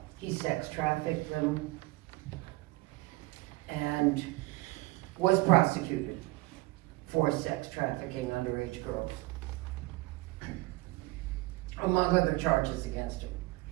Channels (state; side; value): quieter; left; 21.2 dB